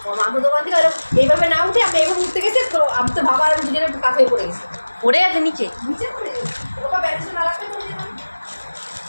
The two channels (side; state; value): both; inverted; correlation -1.00